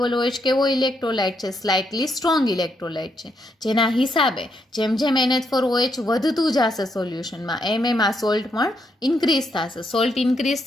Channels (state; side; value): normal; both; correlation 0.78